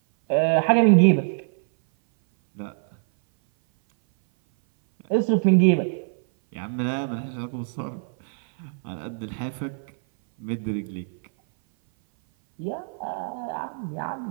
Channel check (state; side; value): silent; left; 58 dB below the other